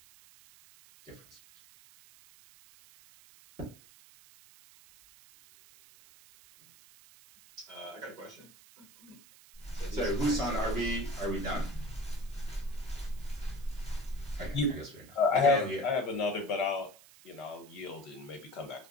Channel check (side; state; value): right; noise; hiss, 23 dB below the sound